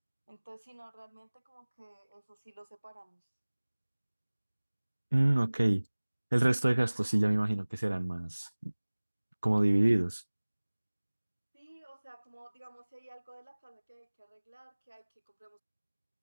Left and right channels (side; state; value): both; inverted; correlation -1.00